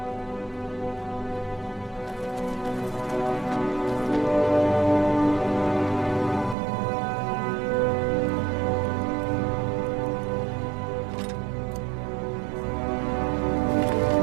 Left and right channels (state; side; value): drops out; left; at 6.6 s